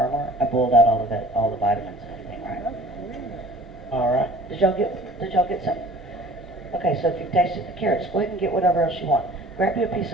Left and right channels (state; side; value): normal; both; correlation 0.49